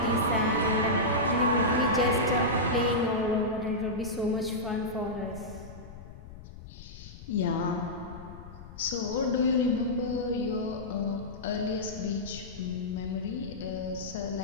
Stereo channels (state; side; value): noise; left; rumble, 15 dB below the sound